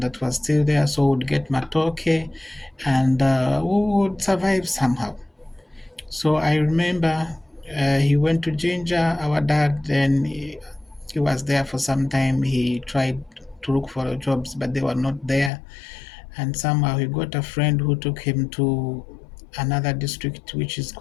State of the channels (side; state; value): right; drops out; at 15.5 s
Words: that was still there, so we'd get matoke, and we would survive somehow. So I remember he went to Ginger, our dad, then he was there for some time. He tried to look for jobs, but they were not there. And somehow he got a friend who took him to another district which is